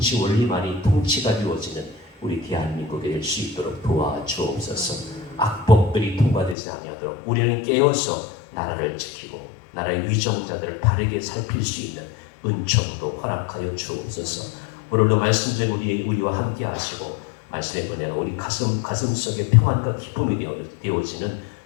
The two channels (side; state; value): right; drops out; at 6.6 s